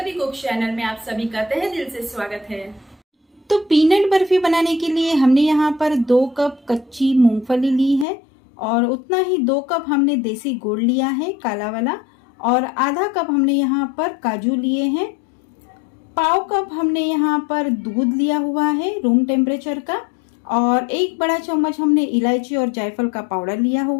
कुक चैनल में आप सभी का तहे दिल से स्वागत है। तो पीनट बर्फ़ी बनाने के लिए हमने यहाँ पर 2 कप कच्ची मूंगफली ली है और उतना ही 2 कप हमने देसी गुड़ लिया है काला वाला, और आधा कप हमने यहाँ पर काजू लिए हैं। पाव कप हमने यहाँ पर दूध लिया हुआ है रूम टेम्परेचर का, और 1 बड़ा चम्मच हमने इलायची और जायफल का पाउडर लिया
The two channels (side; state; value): right; drops out; at 8.1 s